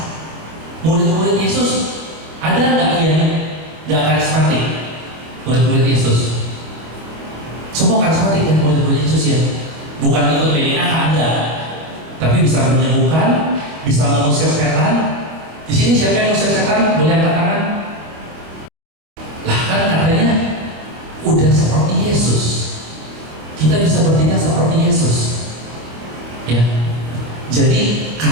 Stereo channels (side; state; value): left; late; 25 ms